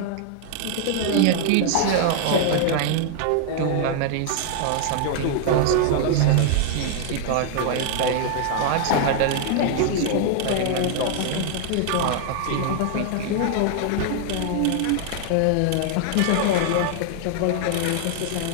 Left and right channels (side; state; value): both; different; correlation 0.00